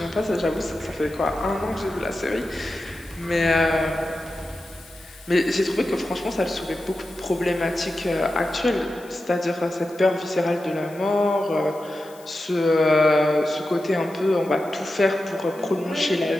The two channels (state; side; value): noise; left; hiss, 23 dB below the sound